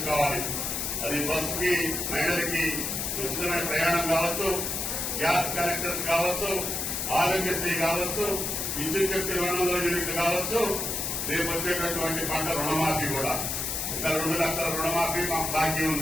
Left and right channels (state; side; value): noise; left; hiss, 2 dB below the sound